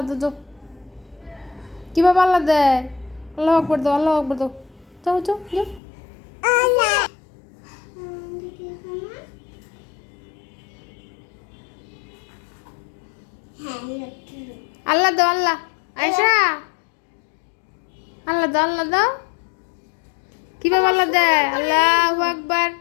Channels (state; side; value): drops out; right; at 5.8 s